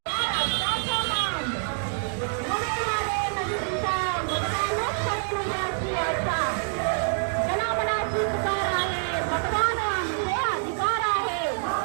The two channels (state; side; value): silent; left; digital silence